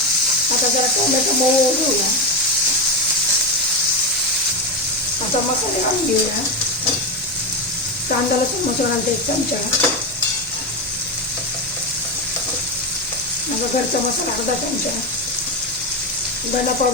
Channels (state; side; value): noise; right; hum, 27 dB below the sound